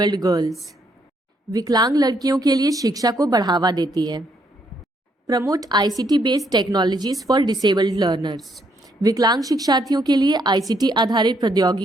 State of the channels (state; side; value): normal; both; correlation 0.72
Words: girls. विकलांग लड़कियों के लिए शिक्षा को बढ़ावा देती है। Promote ICT based technologies for disabled learners. विकलांग शिक्षार्थियों के लिए ICT आधारित